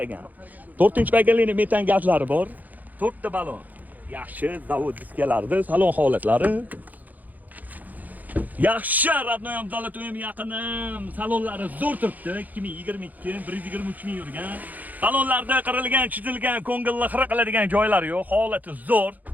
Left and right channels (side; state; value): left; late; 0.081 ms